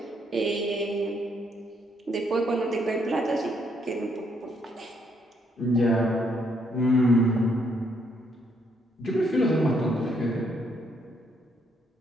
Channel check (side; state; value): both; normal; correlation 0.72